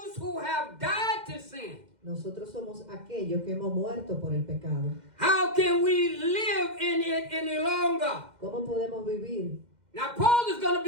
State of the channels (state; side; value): late; left; 2.1 ms